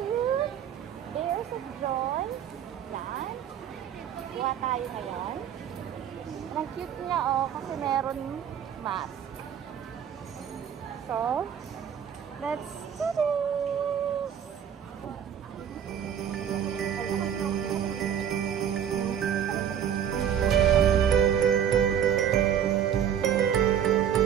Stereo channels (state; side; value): quieter; left; 8.9 dB